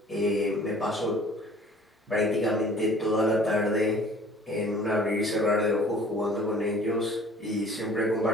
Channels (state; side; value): normal; both; correlation 0.51